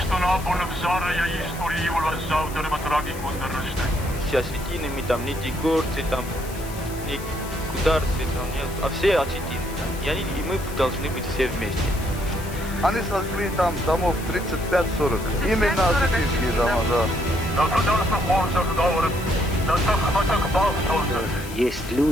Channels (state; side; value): noise; left; hiss, 15 dB below the sound